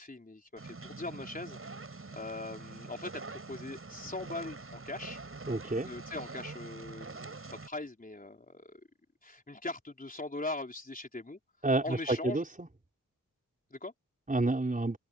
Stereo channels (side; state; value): both; normal; correlation 0.46